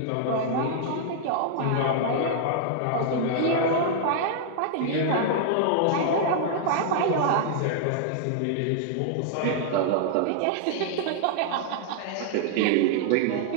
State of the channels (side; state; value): both; different; correlation -0.01